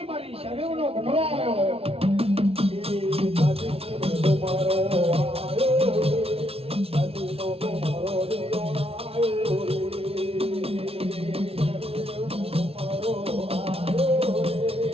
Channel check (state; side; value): late; left; 0.28 ms